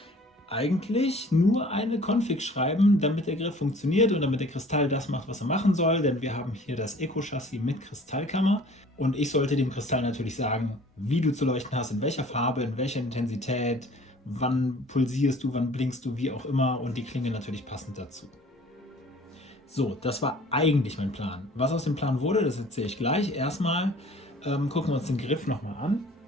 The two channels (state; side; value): normal; both; correlation 0.50